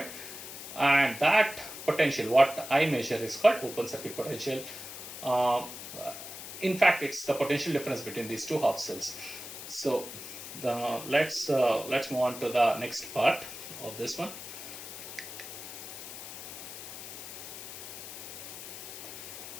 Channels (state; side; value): noise; left; hiss, 10 dB below the sound